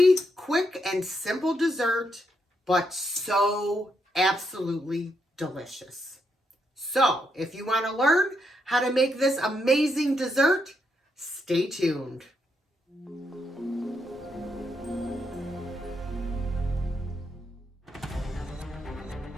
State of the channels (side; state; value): both; normal; correlation 0.79